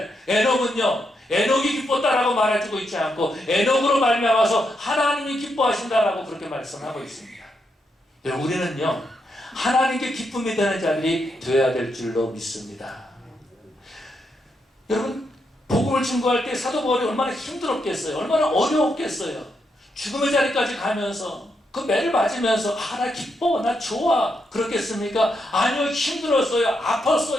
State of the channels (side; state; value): both; normal; correlation 0.81